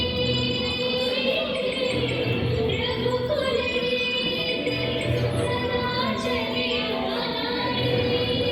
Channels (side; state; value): both; identical; correlation 1.00